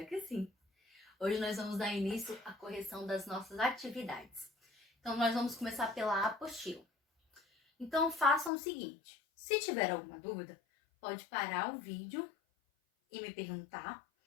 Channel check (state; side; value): drops out; right; at 8.5 s